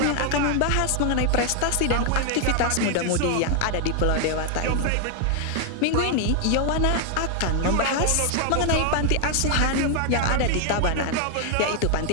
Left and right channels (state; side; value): different; both; correlation 0.00